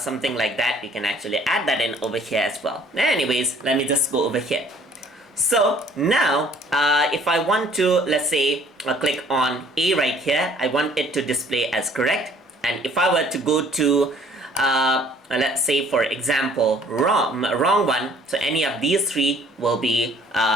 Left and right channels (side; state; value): both; normal; correlation 0.57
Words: like that, you can actually add that in over here as well. Anyways, let me just go over here. So now if I want to, let's say, click on A right here, I want it to display as correct. And if I were to go to let's say for example wrong one, so any of these 3 will be